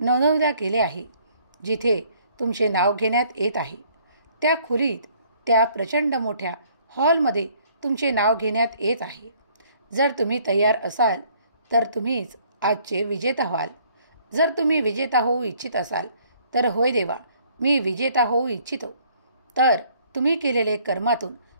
गेले आहे. जिथे तुमचे नाव घेण्यात येत आहे त्या खोलीत, त्या प्रचंड मोठ्या हॉलमध्ये तुमचे नाव घेण्यात येत आहे. जर तुम्ही तयार असाल तर तुम्हीच आजचे विजेता व्हाल. जर तुम्ही विजेता होऊ इच्छित असाल तर होय देवा, मी विजेता होऊ इच्छितो, तर तुम्ही केलेले कर्मातून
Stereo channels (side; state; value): both; inverted; correlation -0.61